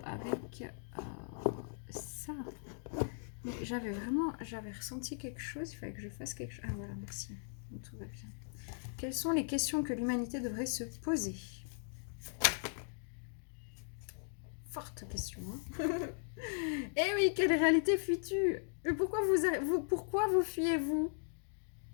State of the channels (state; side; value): silent; right; digital silence